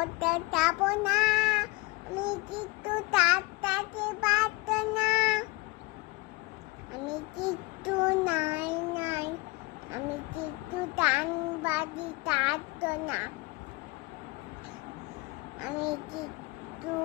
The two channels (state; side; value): quieter; right; 24.3 dB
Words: যাবো না, আমি কিন্তু তাড়াতাড়ি পারতো না, আমি কিন্তু নাই, আমি কিন্তু টান বাজি পারতো না, আমি কিন্তু